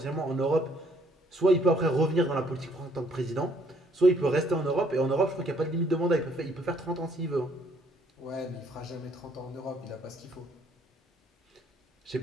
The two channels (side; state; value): both; normal; correlation 0.65